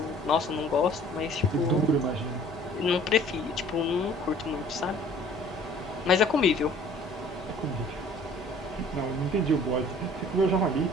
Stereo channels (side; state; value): both; normal; correlation 0.52